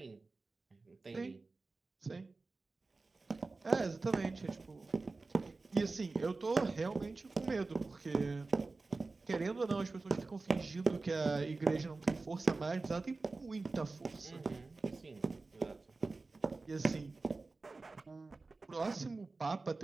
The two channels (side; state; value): left; quieter; 3.6 dB